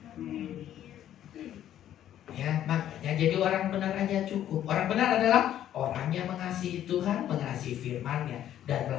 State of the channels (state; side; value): quieter; right; 11.4 dB